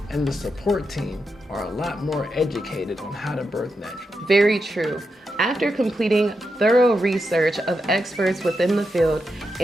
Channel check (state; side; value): normal; both; correlation 0.86